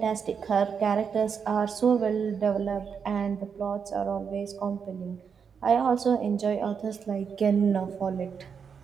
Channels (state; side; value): quieter; left; 6.5 dB